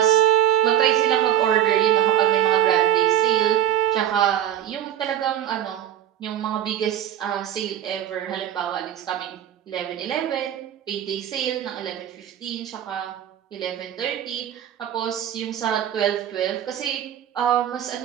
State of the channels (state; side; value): quieter; left; 11.0 dB